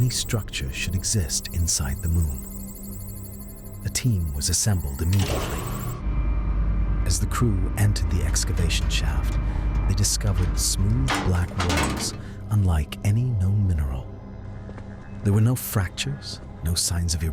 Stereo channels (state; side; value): identical; both; correlation 1.00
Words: structure should exist inside the moon. A team was assembled immediately. As the crew entered the excavation shaft, they discovered smooth black walls unlike any known mineral. There were no fractures, no signs of